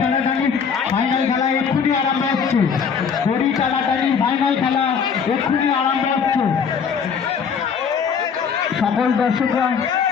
ফাইনাল খেলা এক্ষুনি আরম্ভ হচ্ছে। দড়ি টানাটানি ফাইনাল খেলা এক্ষুনি আরম্ভ হচ্ছে। সকল দর্শকরা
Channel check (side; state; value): right; quieter; 6.5 dB